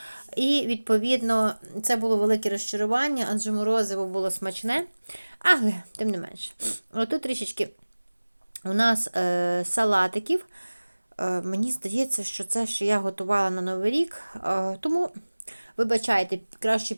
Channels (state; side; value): inverted; both; correlation -1.00